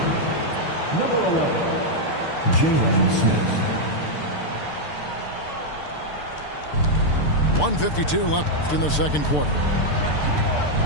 Number 11, Jalen Smith. 1:52 left in the second quarter.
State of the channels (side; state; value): right; late; 6.7 ms